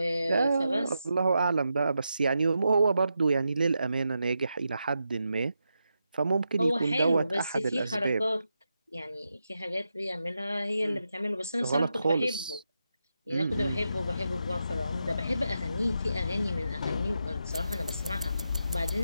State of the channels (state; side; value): inverted; both; correlation -0.87